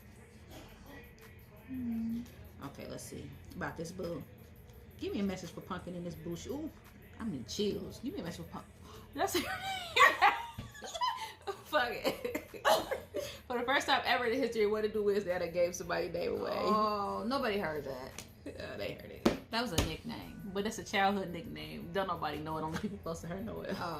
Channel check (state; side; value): identical; both; correlation 1.00